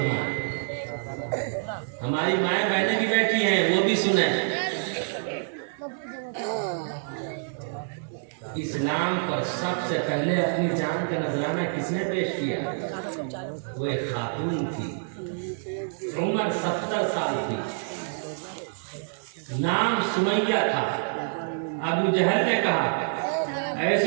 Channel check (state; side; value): silent; left; 60 dB below the other